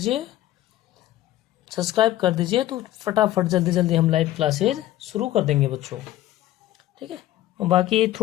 कर दीजिए तो फटाफट जल्दी जल्दी हम लाइव क्लासेज शुरू कर देंगे बच्चों। ठीक है, और बाकी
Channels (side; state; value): right; quieter; 14.3 dB